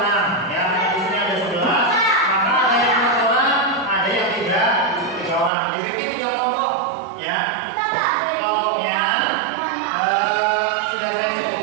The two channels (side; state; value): left; drops out; at 5.5 s